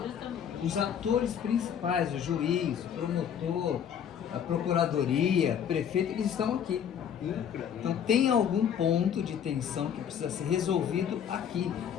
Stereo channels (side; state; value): right; quieter; 8.5 dB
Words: os atores principais, o juiz, o promotor, a procuradoria, o prefeito, eles estão aqui. Então tem algum ponto de tensão que precisa ser resolvido aqui.